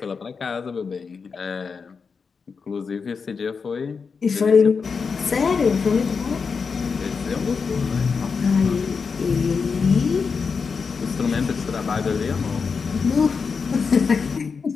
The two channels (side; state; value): right; quieter; 5.4 dB